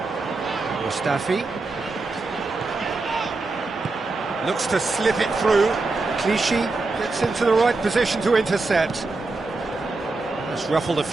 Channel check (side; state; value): left; quieter; 3.5 dB